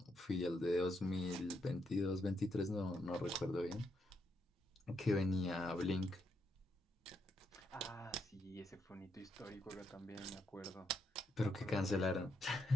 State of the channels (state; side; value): normal; both; correlation 0.79